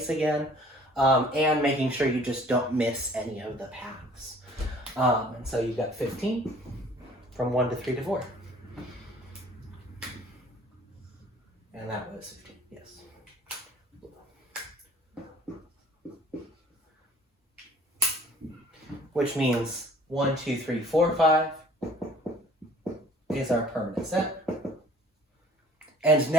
again, and making sure you just don't miss any of the paths. And so you've got 15 from 1 to 3 to 4. And that was 15, yes. Which means 1, 2, 3, 4, 5 is our permanent set. And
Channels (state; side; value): normal; both; correlation 0.53